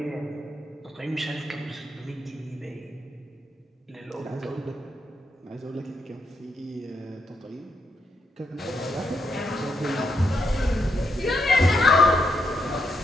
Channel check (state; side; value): normal; both; correlation 0.79